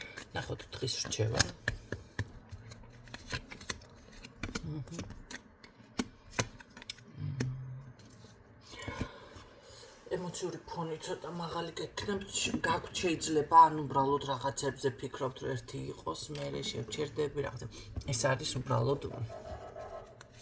ნახოთ დღის რჩევა. ემოციური ფონი ცოტა მაღალი გექნებთ, გაქვთ შეიძლება ან უბრალოდ რაღაცებზე ფიქრობთ, რომ ერთი იყოს, მერე შევჩერდები რაღაცა. ეს არის უბრალოდ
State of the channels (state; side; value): identical; both; correlation 1.00